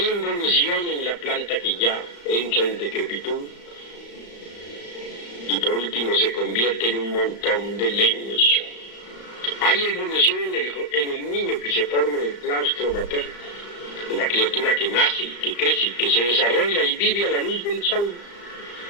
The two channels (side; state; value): right; late; 35 ms